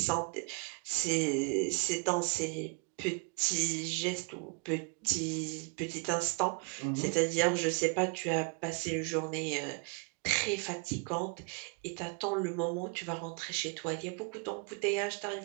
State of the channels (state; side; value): quieter; left; 33.1 dB